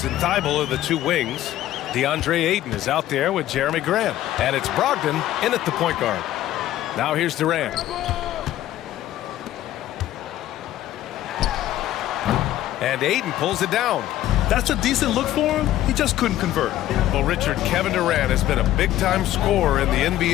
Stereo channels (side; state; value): right; quieter; 13.6 dB